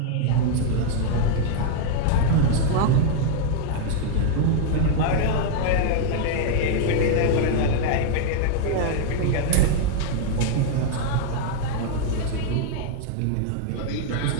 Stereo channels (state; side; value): different; both; correlation 0.00